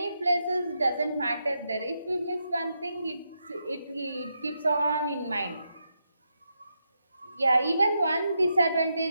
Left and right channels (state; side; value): inverted; both; correlation -0.83